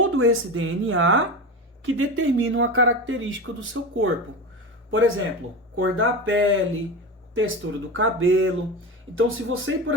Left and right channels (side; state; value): both; normal; correlation 0.24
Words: esse DNA que determina uma característica do seu corpo. Por exemplo, cor da pele, textura do cabelo. Então, se você, por